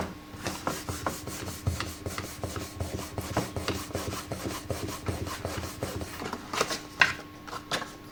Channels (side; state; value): both; identical; correlation 1.00